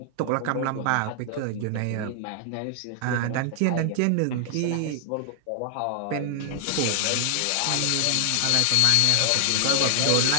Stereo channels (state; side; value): different; both; correlation 0.00